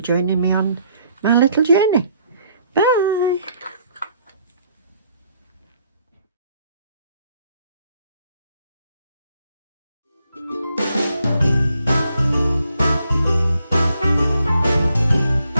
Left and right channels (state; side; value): inverted; both; correlation -0.70